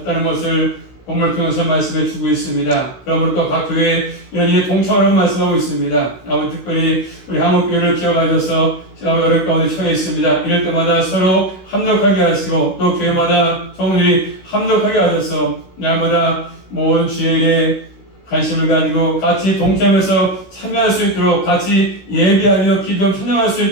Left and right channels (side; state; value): right; late; 16 ms